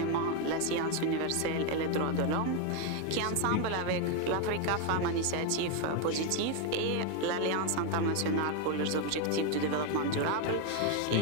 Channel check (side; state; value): both; different; correlation 0.01